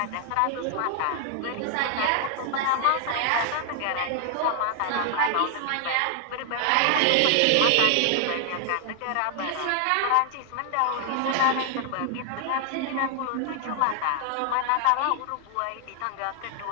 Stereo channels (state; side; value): different; both; correlation 0.00